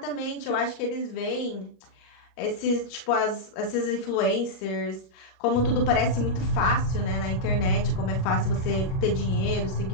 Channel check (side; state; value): right; late; 37 ms